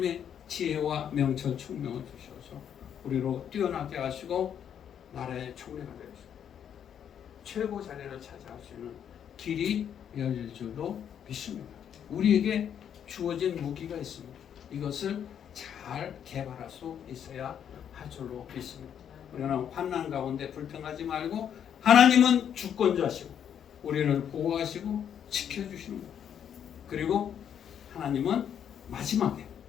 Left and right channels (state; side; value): quieter; right; 8.8 dB